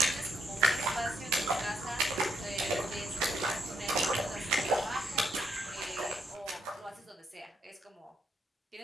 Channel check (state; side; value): normal; both; correlation 0.76